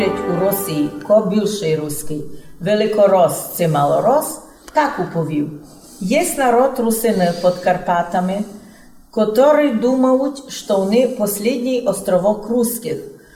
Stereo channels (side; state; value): both; identical; correlation 1.00